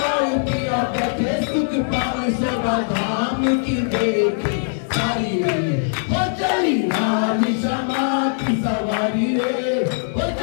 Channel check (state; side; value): silent; right; 65 dB below the other